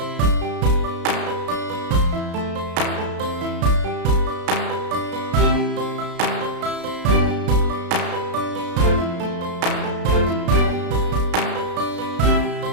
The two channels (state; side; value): late; left; 33 ms